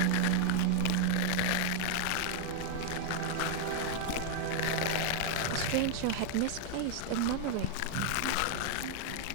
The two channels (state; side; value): different; both; correlation 0.00